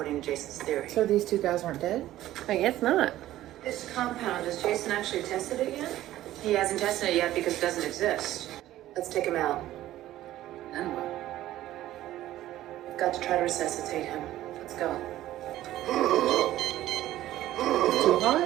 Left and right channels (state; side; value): quieter; left; 14.2 dB